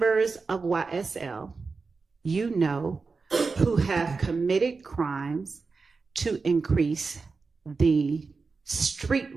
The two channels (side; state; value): left; quieter; 4.4 dB